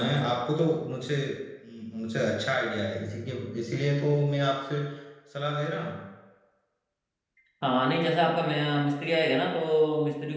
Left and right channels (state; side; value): identical; both; correlation 1.00